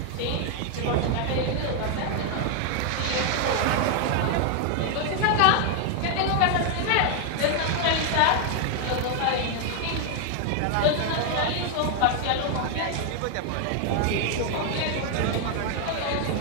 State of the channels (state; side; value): different; both; correlation 0.00